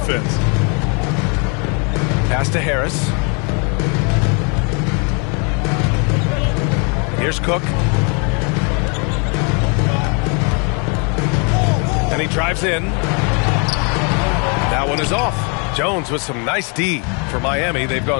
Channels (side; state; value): right; quieter; 35.4 dB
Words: Pass to Harris. Here's Cook. And he drives in. That one is off. Jones with some nice D for Miami. They've